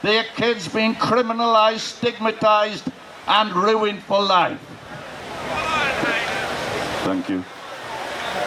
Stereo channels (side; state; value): both; identical; correlation 1.00